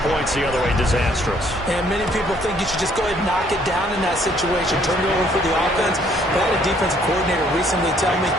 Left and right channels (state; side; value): normal; both; correlation 0.64